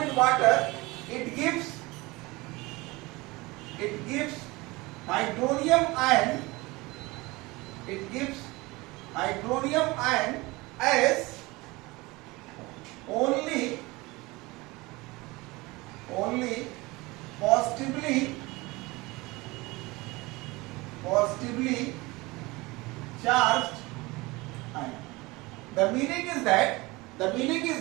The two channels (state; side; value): quieter; left; 22.6 dB